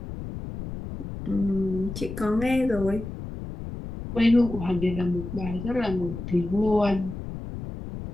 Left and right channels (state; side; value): noise; left; rumble, 8 dB below the sound